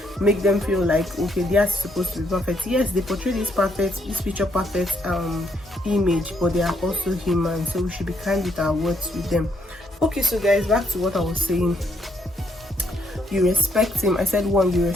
make them feel like, okay, they are supposed to be perfect. Yes, they portray this picture perfect image, but they are also human, so we should be kind with our words with them. Okay, so guys, back to what I was saying. You respect him. I said 1, you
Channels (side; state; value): both; normal; correlation 0.73